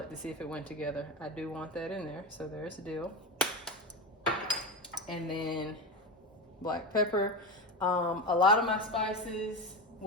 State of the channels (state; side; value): normal; both; correlation 0.19